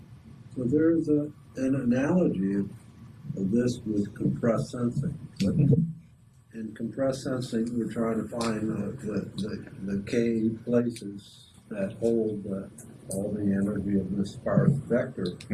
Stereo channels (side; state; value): both; identical; correlation 1.00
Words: So there's an analogy of this with compressed sensing. But in compressed sensing, we're trying to find the k places that hold all the energy of this sparse vector,